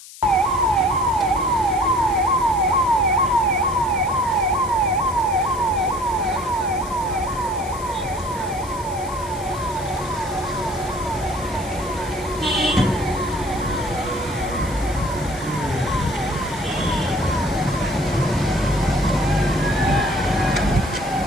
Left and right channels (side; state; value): left; noise; hiss, 17 dB below the sound